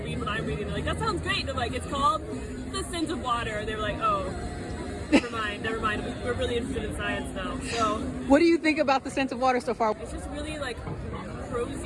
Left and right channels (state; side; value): identical; both; correlation 1.00